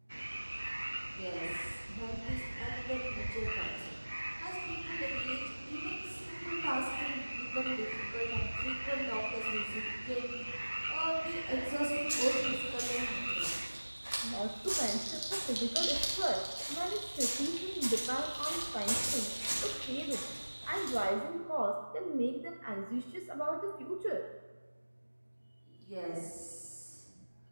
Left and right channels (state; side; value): inverted; both; correlation -1.00